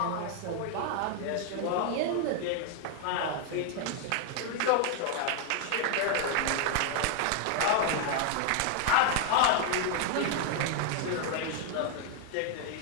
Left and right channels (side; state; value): both; different; correlation 0.00